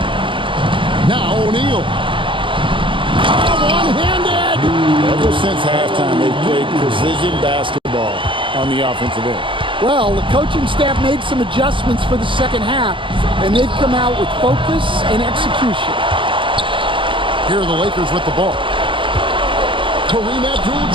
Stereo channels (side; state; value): left; late; 0.25 ms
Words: Now O'Neal. One-handed. Ever since halftime, they've played precision basketball on the offensive end. Well, the coaching staff made some adjustments for the second half, and they've come out with focus and execution. Here are the Lakers with the ball. Kareem